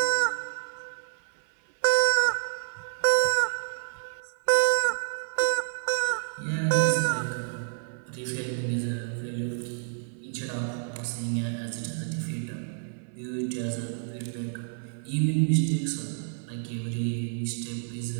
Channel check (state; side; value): silent; left; digital silence